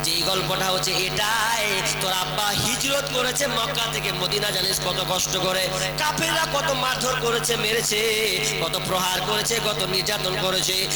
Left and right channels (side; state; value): left; noise; rumble, 20 dB below the sound